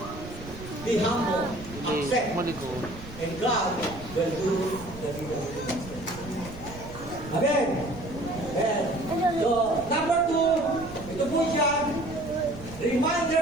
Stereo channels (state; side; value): noise; right; rumble, 14 dB below the sound